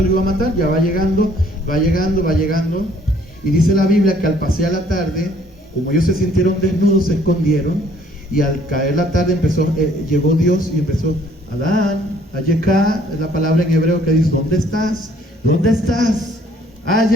lo iba a matar, ya va llegando, va llegando, va llegando. Y dice la Biblia que al pasar la tarde, como ellos se sintieron desnudos, se escondieron, y al caer la tarde llegó Dios y empezó, Adán, Ayeka, es la palabra en hebreo que dice, ¿dónde estás? ¿Dónde estás?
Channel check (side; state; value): both; normal; correlation 0.60